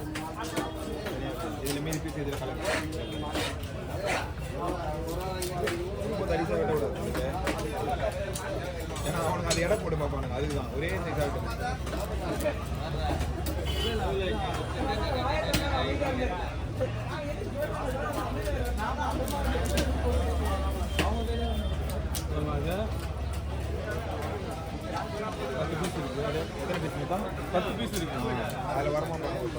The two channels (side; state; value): both; identical; correlation 1.00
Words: இதில் மீன் பீஸ் இதில் கலந்து ரொம்ப தரிசாக வெட்ட விடாது ஏன்னா அவனுக்கு அது எடை போட்டு பார்ப்பானுங்க அதுதான் ஒரே சைஸாக பத்து பீஸ் இருக்கு அதில் வரமா